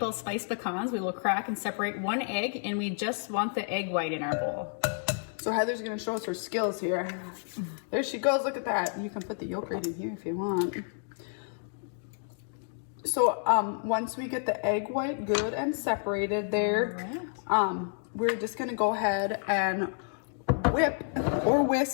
spiced pecans, we will crack and separate one egg, and we just want the egg white in our bowl. So Heather's gonna show us her skills here. There she goes, look at that. You can put the yolk right in here if you want. So once we get the egg white good and separated there, we're just gonna go ahead and whip or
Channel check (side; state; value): right; silent; 58 dB below the other